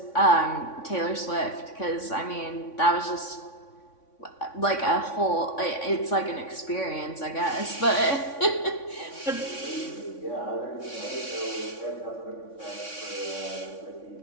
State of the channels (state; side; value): late; right; 3.6 ms